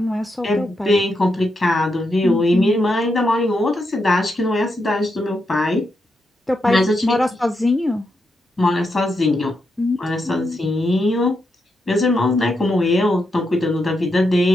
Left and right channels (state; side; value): normal; both; correlation 0.84